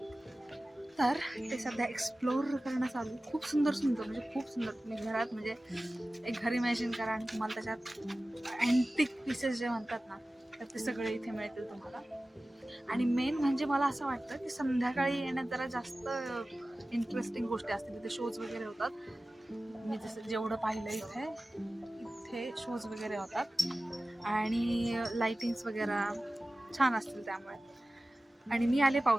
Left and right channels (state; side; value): normal; both; correlation 0.96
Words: तर ते सध्या एक्सप्लोर करणं चालू. खूप सुंदर म्हणजे खूप सुंदर. तुम्ही घरात म्हणजे एक घर इमॅजिन करा आणि तुम्हाला त्याच्यात अँटिक पीसेस जे म्हणतात ना तर ते सगळे इथे मिळतील तुम्हाला. आणि मेन म्हणजे मला असं वाटतं की संध्याकाळी येण्यात जरा जास्त इंटरेस्टिंग गोष्टी असतील. तिथे शोज वगैरे होतात. मी जसं जेवढं पाहिलं इथे शोज वगैरे होतात आणि लाइटिंग्स वगैरे छान असतील त्यामुळे. आणि मी आले